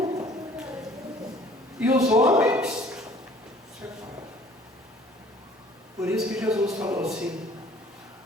E os homens separam. Por isso que Jesus falou assim:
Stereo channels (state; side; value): normal; both; correlation 0.53